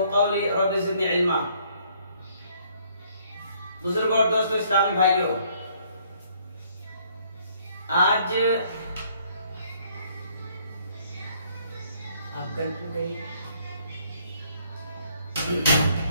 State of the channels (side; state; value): both; inverted; correlation -0.64